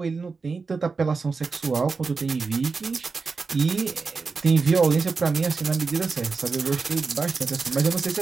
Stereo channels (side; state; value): left; quieter; 4.5 dB